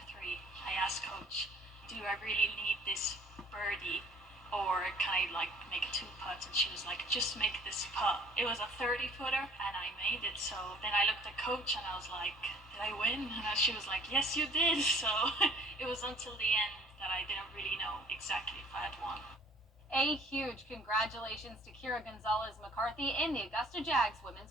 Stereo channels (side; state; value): both; normal; correlation 0.54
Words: 3, I asked coach, do I really need this birdie? Or can I like make a 2 putts? And she was like, just make this putt. It was a 30-footer and I made it. So then I looked at coach and I was like, did I win? And she was like, yes, you did. So it was until the end that I didn't really know exactly if I had won. A huge congratulations to Kira Gonzalez-McCarthy and the Augusta Jags